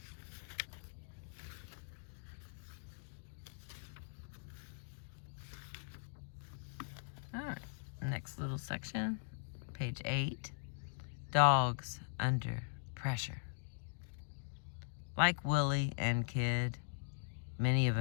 Alright, next little section, page 8, dogs under pressure. Like Willie and Kid, many of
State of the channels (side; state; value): right; silent; digital silence